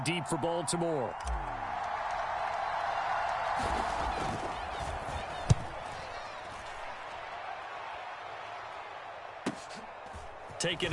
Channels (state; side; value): identical; both; correlation 1.00